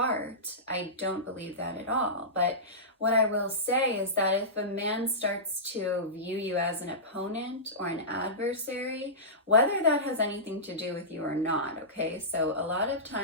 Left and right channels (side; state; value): both; normal; correlation -0.18